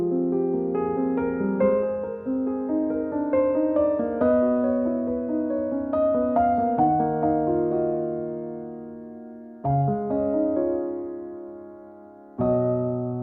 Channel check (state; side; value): identical; both; correlation 1.00